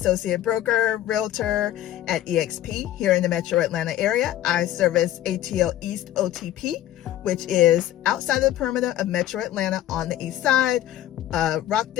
broker, realtor at eXp here in the metro Atlanta area. I service ATL East OTP, which is outside of the perimeter of metro Atlanta on the east side,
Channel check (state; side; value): quieter; right; 13.1 dB